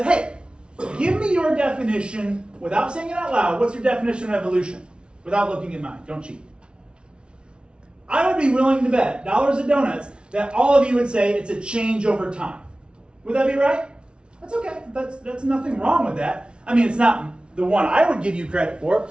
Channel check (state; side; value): late; left; 0.057 ms